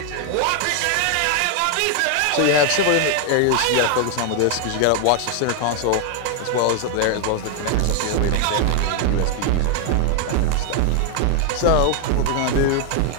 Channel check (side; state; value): both; different; correlation 0.00